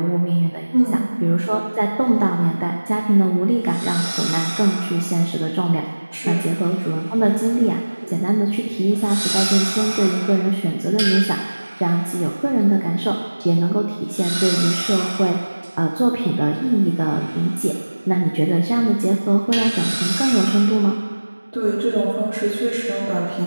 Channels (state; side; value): inverted; both; correlation -1.00